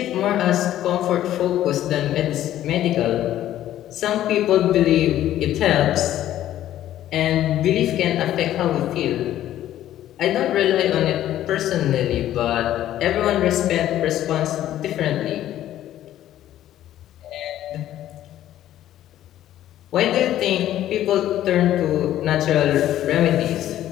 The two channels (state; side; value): quieter; right; 12.6 dB